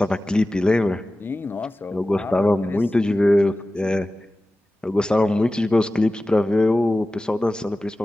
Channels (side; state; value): both; normal; correlation 0.96